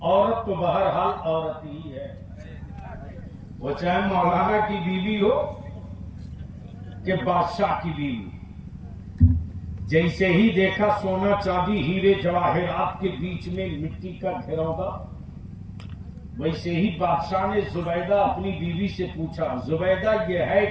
عورت تو بہرحال عورت ہی ہے، وہ چاہے مولانا کی بیوی ہو کہ بادشاہ کی بیوی۔ جیسے ہی دیکھا سونا چاندی ہیرے جواہرات کے بیچ میں مٹی کا گھروندہ، ویسے ہی بادشاہ نے زبیدہ اپنی بیوی سے پوچھا، زبیدہ یہ ہے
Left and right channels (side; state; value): both; identical; correlation 1.00